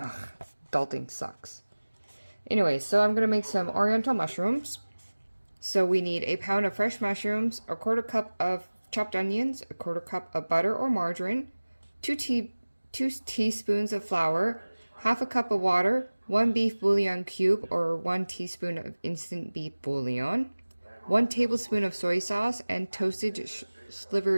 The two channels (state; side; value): inverted; both; correlation -1.00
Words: adulting sucks. Anyway, so I'm gonna make some Oriental mushrooms. So we need a pound of fresh mushrooms, a quarter cup of chopped onions, a quarter cup of butter or margarine, two teaspoons of flour, half a cup of water, one beef bouillon cube or 1 teaspoon of instant beef bouillon, 1 tablespoon of soy sauce, and toasted